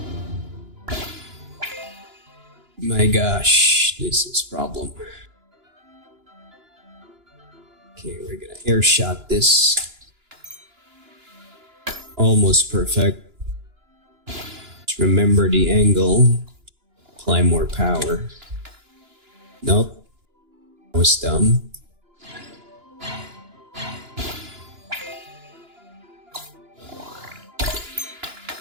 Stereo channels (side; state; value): left; late; 2.9 ms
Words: My gosh, this is a problem. Okay, we're gonna air shot this. Almost perfect. Just remember the angle. Apply more power. Nope. That was dumb.